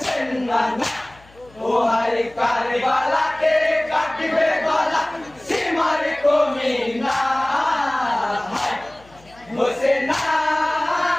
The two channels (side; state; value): left; noise; hum, 27 dB below the sound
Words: নানা ও হায় কারবালাতে কাটবে গলা সীমার কমিনা হোসেনা